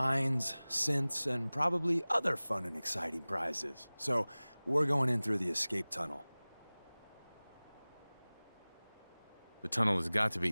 synths, and probably other fun and exciting prizes. So, we're going in through the escape tunnel. The tunnel has got to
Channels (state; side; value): inverted; both; correlation -1.00